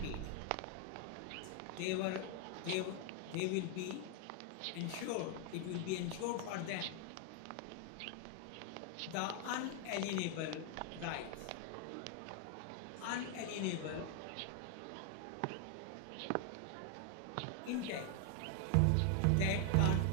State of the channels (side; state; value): both; different; correlation 0.00